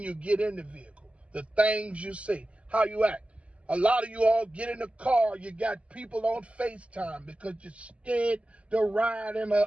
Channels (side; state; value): left; late; 0.062 ms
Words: you get in the vehicle, the things you say, how you act. A lot of you all get in the car, you got people on FaceTime because you're scared to ride in an